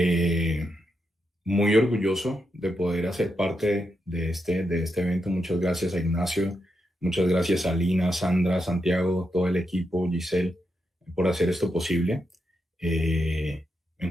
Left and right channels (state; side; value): normal; both; correlation 0.84